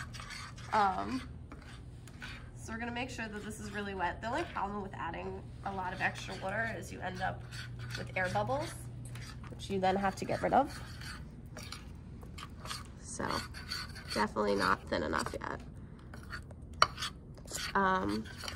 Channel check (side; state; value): both; identical; correlation 1.00